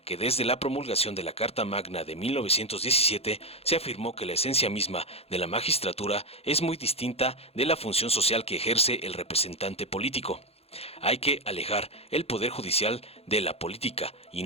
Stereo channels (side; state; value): right; late; 0.29 ms